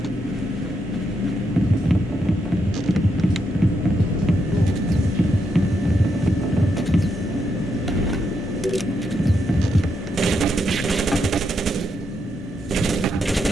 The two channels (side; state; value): both; normal; correlation 0.80